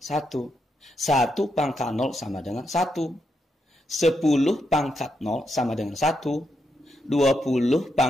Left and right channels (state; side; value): normal; both; correlation 0.82